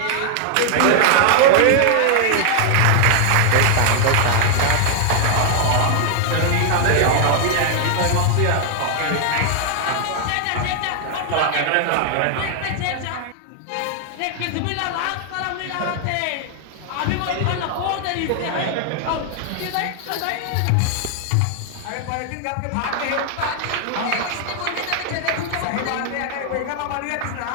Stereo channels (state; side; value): different; both; correlation 0.00